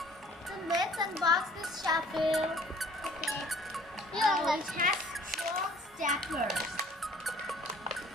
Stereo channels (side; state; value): both; normal; correlation 0.54